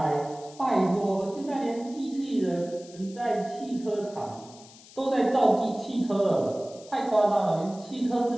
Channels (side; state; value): left; noise; hiss, 21 dB below the sound